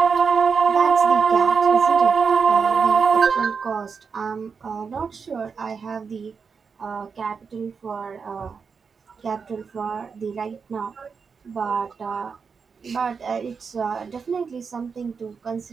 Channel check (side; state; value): left; quieter; 5.6 dB